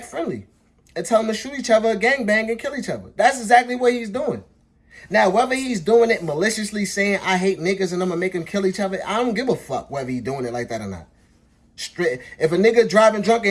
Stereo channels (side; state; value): both; identical; correlation 1.00